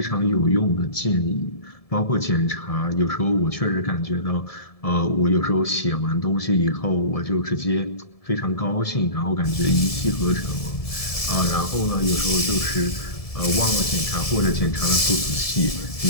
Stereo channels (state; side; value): late; right; 1.7 ms